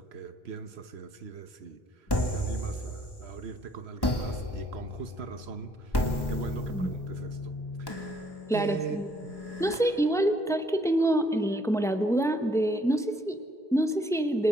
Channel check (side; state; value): both; normal; correlation 0.67